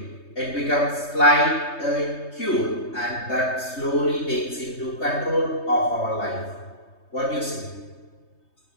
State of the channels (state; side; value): late; right; 3.2 ms